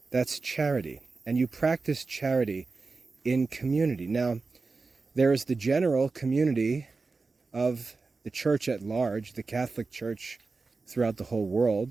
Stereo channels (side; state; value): left; quieter; 4.0 dB